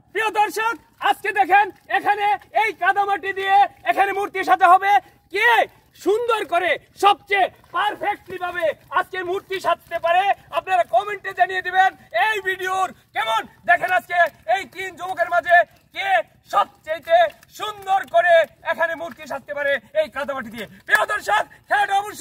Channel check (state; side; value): identical; both; correlation 1.00